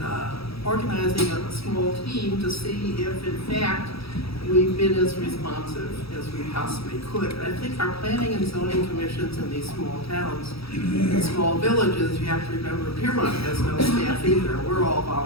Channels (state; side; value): late; right; 0.77 ms